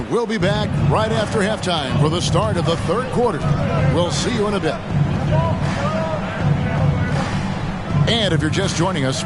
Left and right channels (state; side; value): identical; both; correlation 1.00